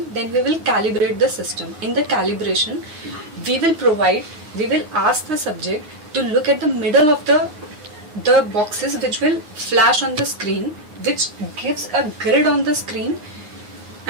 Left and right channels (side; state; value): left; late; 9.7 ms